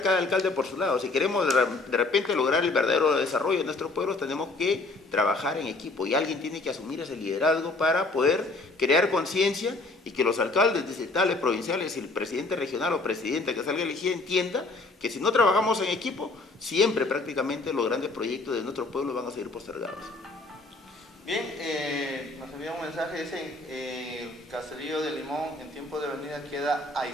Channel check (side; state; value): right; quieter; 3.2 dB